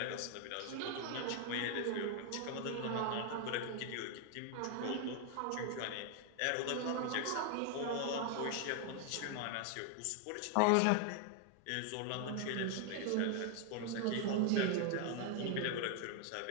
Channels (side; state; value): both; different; correlation 0.00